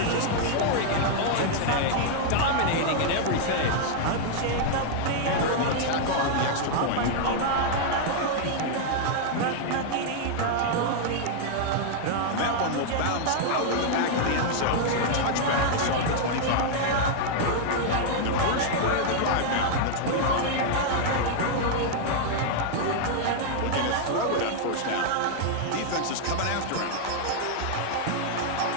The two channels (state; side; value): different; both; correlation -0.01